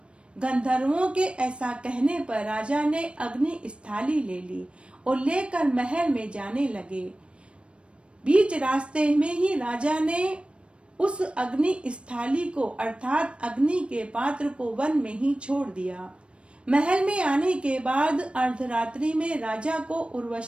गंधर्वों के ऐसा कहने पर राजा ने अग्नि स्थाली ले ली और लेकर महल में जाने लगे। बीच रास्ते में ही राजा ने उस अग्नि स्थाली को अर्थात अग्नि के पात्र को वन में ही छोड़ दिया। महल में आने के बाद अर्धरात्रि में राजा को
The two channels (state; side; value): late; left; 0.058 ms